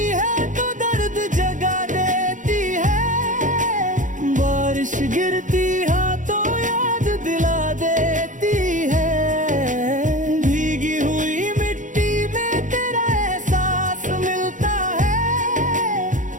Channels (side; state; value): left; late; 0.37 ms